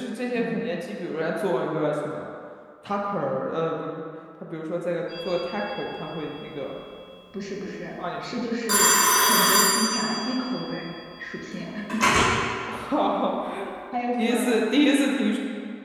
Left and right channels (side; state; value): both; identical; correlation 1.00